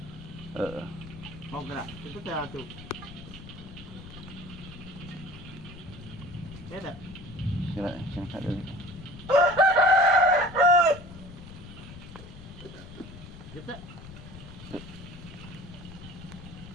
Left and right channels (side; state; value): left; noise; rumble, 14 dB below the sound